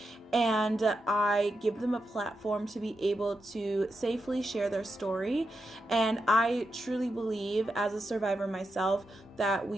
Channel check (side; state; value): both; normal; correlation 0.86